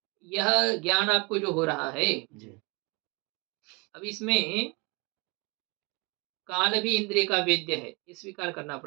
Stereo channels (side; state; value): left; quieter; 28.9 dB